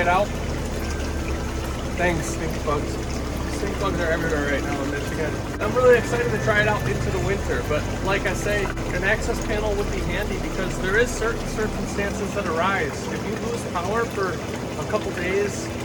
out. Thanks, stink bugs. Stink bugs are everywhere right now in Michigan. I'm really excited to try it out into the winter, but like I say, an access panel would be handy because there is certain circumstances that arise. If you lose power for a couple days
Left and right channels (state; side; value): identical; both; correlation 1.00